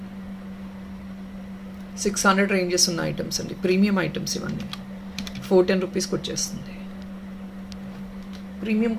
600 రేంజెస్ ఉన్న ఐటమ్స్ అండి, ప్రీమియం ఐటమ్స్ ఇవన్నీ. 410 రూపీస్కి వచ్చేస్తుంది. Premium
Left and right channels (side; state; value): both; identical; correlation 1.00